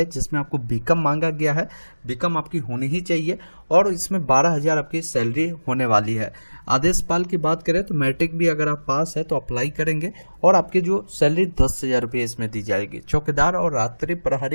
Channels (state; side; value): inverted; both; correlation -1.00